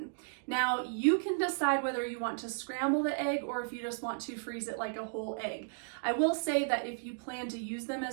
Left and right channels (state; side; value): silent; left; digital silence